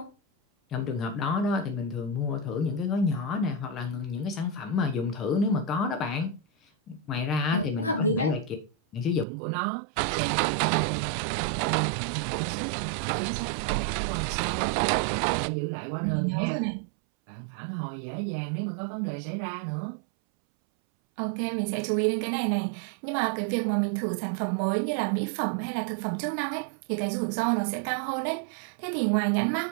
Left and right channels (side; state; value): left; drops out; at 9.2 s